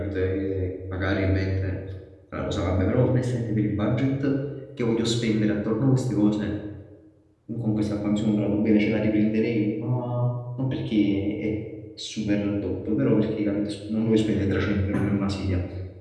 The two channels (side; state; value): both; identical; correlation 1.00